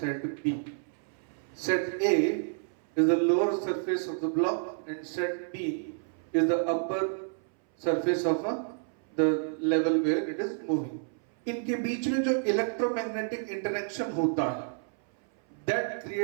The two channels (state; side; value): silent; left; 58 dB below the other